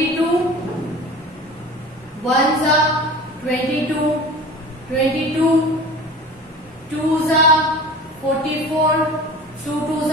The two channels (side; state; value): both; normal; correlation 0.38